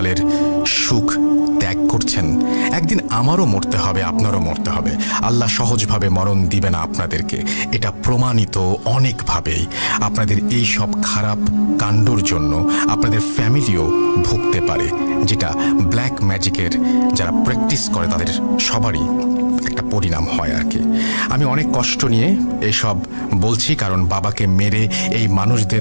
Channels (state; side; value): inverted; both; correlation -1.00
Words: সুখ ত্যাগ করছেন। একদিন আমারও মরতে হবে, আপনারও মরতে হবে। আল্লাহ সহজভাবে মরণ দিবে না আপনাদেরকে, এটা প্রমাণিত অনেকভাবেই। আপনাদের এই সব খারাপ কাণ্ডর জন্য আপনাদের ফ্যামিলিও ভুগতে পারে, যেটা ব্ল্যাক ম্যাজিকের যারা প্র্যাকটিস করে তাদের সবারই একটা পরিণাম হয় আর কি। আমি অনেক কষ্ট নিয়ে এসব বলছি, কারণ বাবাকে মেরে এই